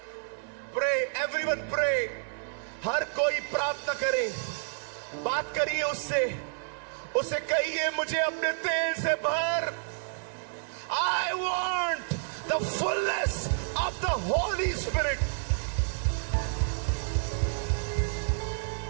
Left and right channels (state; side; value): silent; left; digital silence